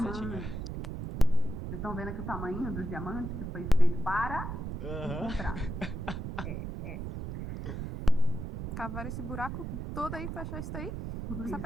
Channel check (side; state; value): right; noise; rumble, 5 dB below the sound